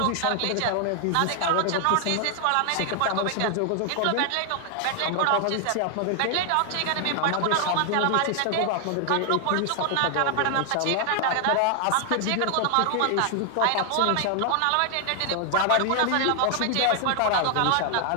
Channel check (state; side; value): different; both; correlation 0.00